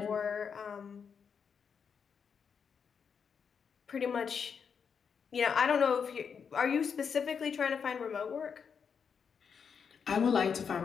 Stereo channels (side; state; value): right; quieter; 6.5 dB